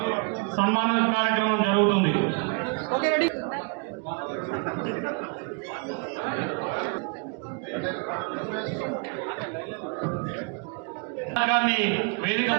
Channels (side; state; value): left; quieter; 35.0 dB